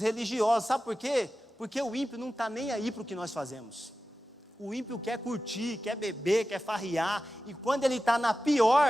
religiosos. Sabe por quê? Porque o ímpio não está nem aí para o que nós fazemos. O ímpio quer curtir, quer beber, quer farriar, e quando ele está na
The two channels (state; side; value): normal; both; correlation 0.94